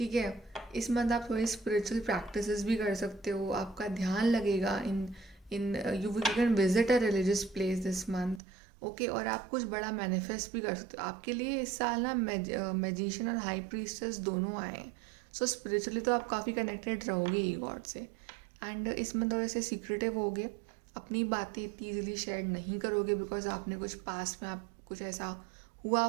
है। इस मंथ आप थोड़ी स्पिरिचुअल प्रैक्टिसेस भी कर सकते हो, आपका ध्यान लगेगा in you can visit a religious place this month, okay. और आप कुछ बड़ा मैनिफेस्ट भी कर सकते हो। आपके लिए इस साल ना मैजिशियन और हाई प्रीस्टेस दोनों आए हैं, सो स्पिरिचुअली तो आप काफ़ी कनेक्टेड रहोगे ही गॉड से। एंड इसमें थोड़े से सीक्रेटिव होगे, अपनी बातें इतनी ईजिली शेयर नहीं करोगे बिकॉज आपने कुछ पास्ट में आप कुछ ऐसा हुआ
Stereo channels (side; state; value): left; drops out; at 8.4 s